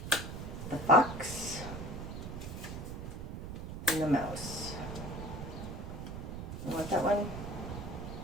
the fox, and the mouse. You want that one?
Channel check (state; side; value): noise; right; rumble, 7 dB below the sound